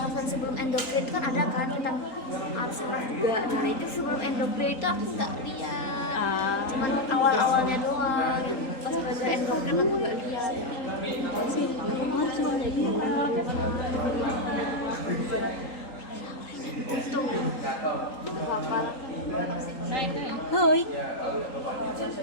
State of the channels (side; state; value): right; late; 3.8 ms